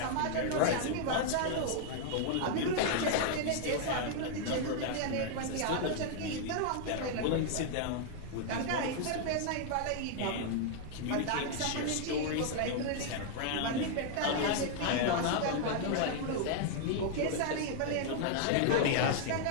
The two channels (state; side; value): different; both; correlation 0.00